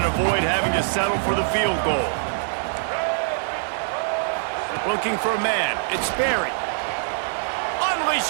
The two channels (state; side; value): silent; left; digital silence